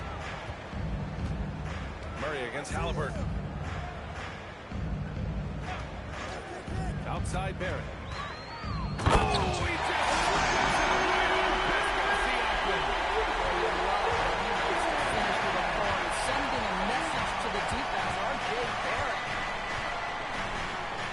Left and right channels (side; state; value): both; identical; correlation 1.00